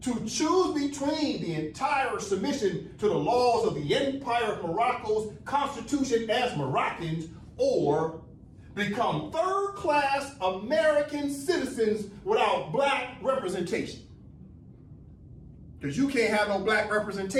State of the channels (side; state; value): both; identical; correlation 1.00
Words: to choose between the entire submission to the laws of the Empire of Morocco's constitution as Moroccans, or become third-class American citizens without black representation. Because you can't have no black